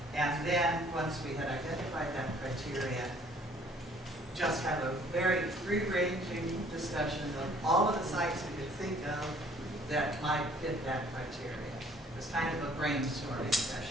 And then, once we had identified that criteria, just have a very free-ranging discussion of all of the sites we could think of that might fit that criteria. It was kind of a brainstorming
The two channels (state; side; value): normal; both; correlation 0.58